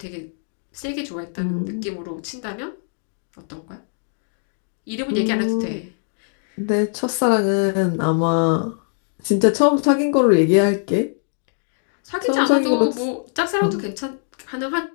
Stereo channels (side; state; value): right; silent; digital silence